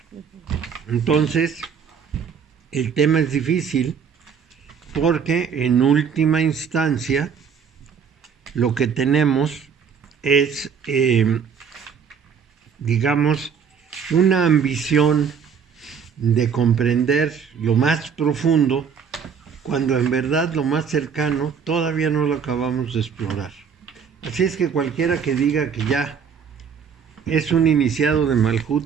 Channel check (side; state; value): left; quieter; 6.8 dB